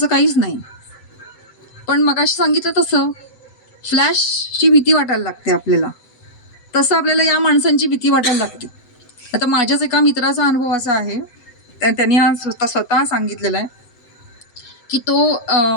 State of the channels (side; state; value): right; late; 7.9 ms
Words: काहीच नाही. पण मगाशी सांगितलं तसं फ्लॅशची भीती वाटायला लागते आपल्याला, तसं आपल्याला या माणसांची भीती वाटायला लागते. आता माझ्याच एका मित्राचा अनुभव असा आहे, त्यांनी हा स्वतः सांगितलेला आहे की तो